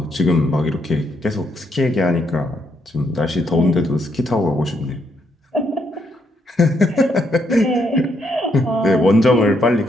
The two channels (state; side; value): normal; both; correlation 0.76